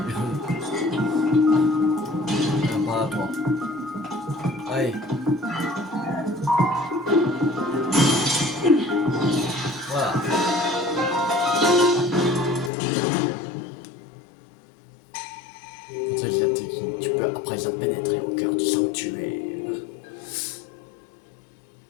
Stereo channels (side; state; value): right; drops out; at 12.7 s